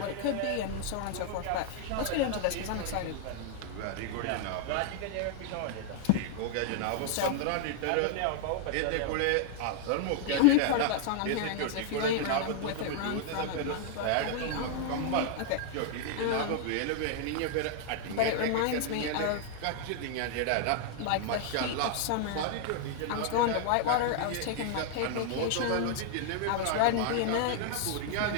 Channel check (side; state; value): both; different; correlation 0.00